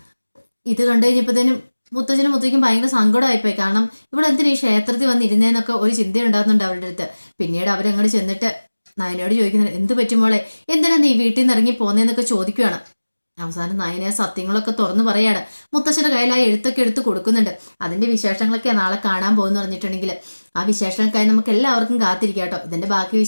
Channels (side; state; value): both; inverted; correlation -1.00